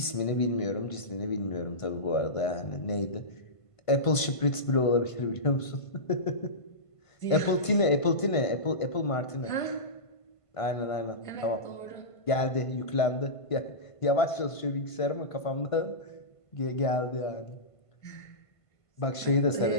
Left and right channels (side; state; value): right; late; 1.5 ms